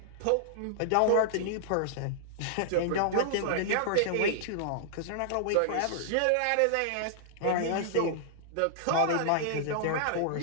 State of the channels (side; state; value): both; different; correlation -0.01